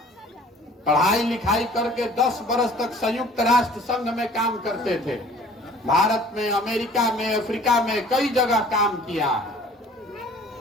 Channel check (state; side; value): normal; both; correlation 0.50